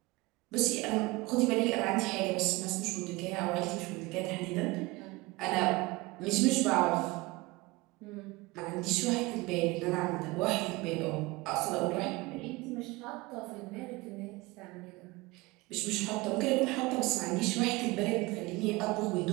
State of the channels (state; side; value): quieter; left; 22.6 dB